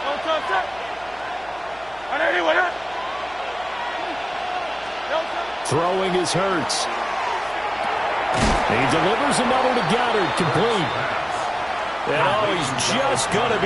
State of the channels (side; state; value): right; noise; hum, 24 dB below the sound